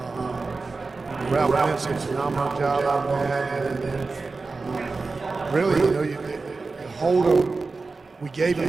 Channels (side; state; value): left; quieter; 4.0 dB